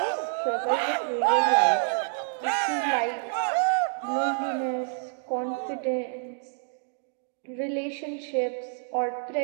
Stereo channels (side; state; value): left; silent; 60 dB below the other